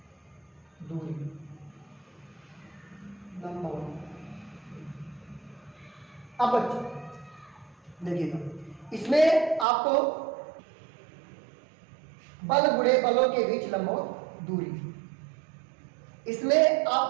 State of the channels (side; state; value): left; drops out; at 9.7 s